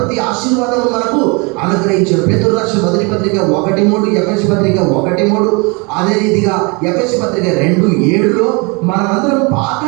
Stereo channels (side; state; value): left; quieter; 29.9 dB